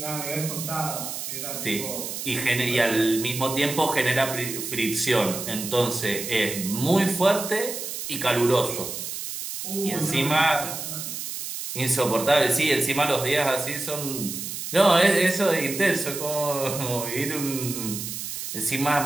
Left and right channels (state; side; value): noise; right; hiss, 6 dB below the sound